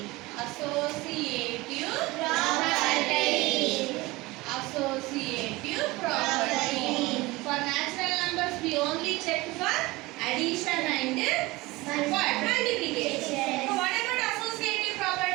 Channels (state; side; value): quieter; left; 21.3 dB